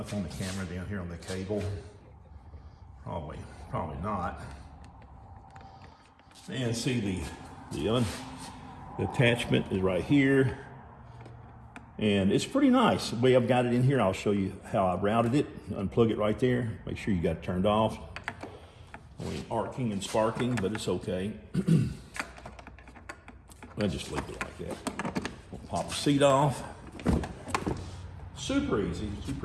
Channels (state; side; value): identical; both; correlation 1.00